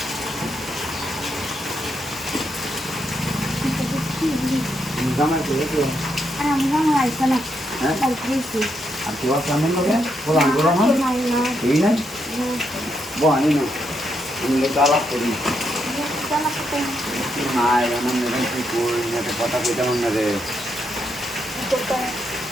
জামাই করে আর কেউ সামনে লোকে বলান করো না এই নাই বহানি না আমি লোক আলাপ করি নাই আমার মেয়ে কি কই না কথা কইতে মনে রে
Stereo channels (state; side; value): normal; both; correlation 0.80